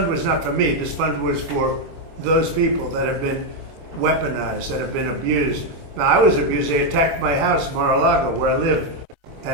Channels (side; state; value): left; late; 25 ms